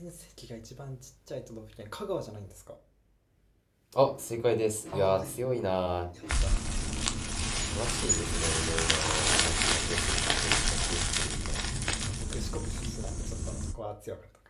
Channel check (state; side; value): identical; both; correlation 1.00